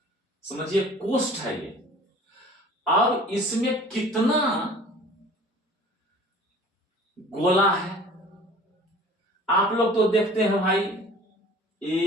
समझिए कोष्ठ है ये। अब इसमें कितना गोला है, आप लोग तो देखते हैं भाई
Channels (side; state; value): both; normal; correlation 0.46